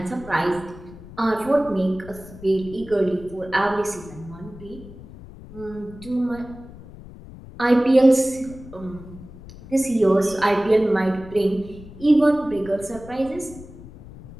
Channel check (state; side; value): noise; left; rumble, 17 dB below the sound